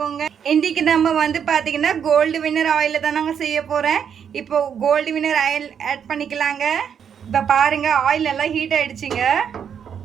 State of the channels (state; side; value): quieter; left; 7.9 dB